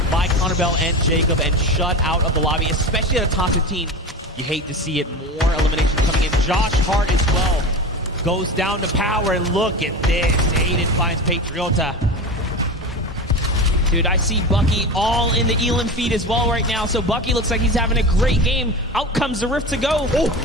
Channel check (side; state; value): both; normal; correlation 0.27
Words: by Connor Bell and Jacob and shut out of the lobby, especially at a top 15. You hate to see it. More eliminations coming in. Josh Hart as well goes down to power, and look at this. Aydan finds Patriota. Dude, I see Bucky all in the Elim feed as well right now, so Bucky looks like he's having a great game. Out comes the rift to go.